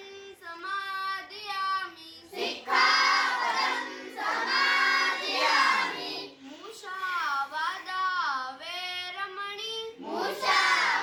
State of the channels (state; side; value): identical; both; correlation 1.00